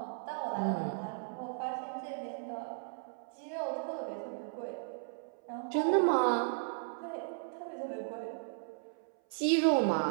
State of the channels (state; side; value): silent; left; 54 dB below the other